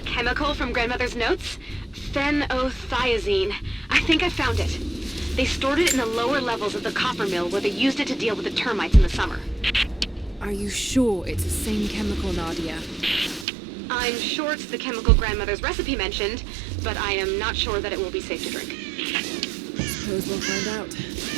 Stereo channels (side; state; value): left; drops out; at 13.5 s